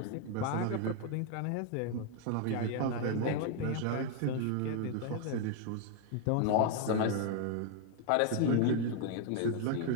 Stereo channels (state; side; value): different; both; correlation 0.00